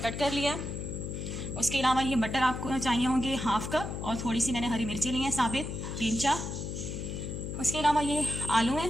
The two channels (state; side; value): noise; left; hum, 5 dB below the sound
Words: कर लिया। उसके अलावा ये मटर आपको चाहिए होंगे हाफ़ कप, और थोड़ी सी मैंने हरी मिर्ची ली हैं साबित 3-4। उसके अलावा ये आलू हैं,